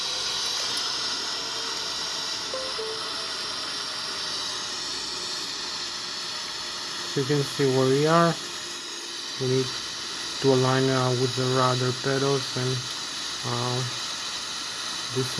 So you can see where we are. We need to align with the rudder pedals and this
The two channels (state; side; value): identical; both; correlation 1.00